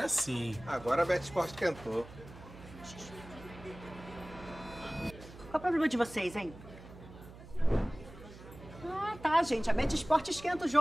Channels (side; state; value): right; noise; hum, 17 dB below the sound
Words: sim. Agora a Bet Esporte esquentou. Qual é o problema de vocês, hein? Ah, tá, gente. A Bet Esporte esquenta o